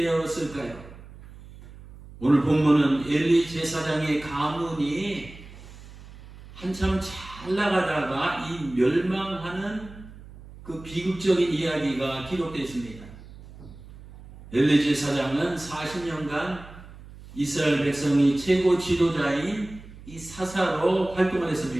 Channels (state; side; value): noise; right; hum, 18 dB below the sound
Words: 오늘 본문은 엘리 제사장의 가문이 한참 잘 나가다가 이 멸망하는 그 비극적인 이야기가 기록되어 있습니다. 엘리 제사장은 40년간 이스라엘 백성이 최고 지도자인 이 사사로 활동을